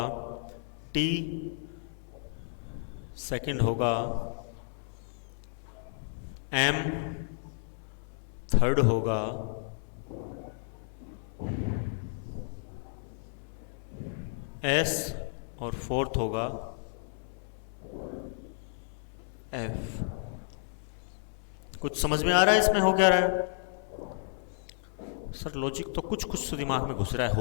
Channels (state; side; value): silent; right; 56 dB below the other